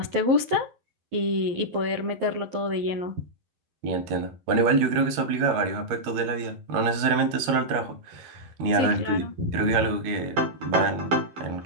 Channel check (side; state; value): left; late; 12 ms